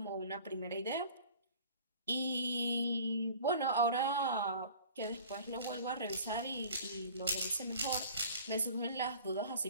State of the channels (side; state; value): both; inverted; correlation -0.45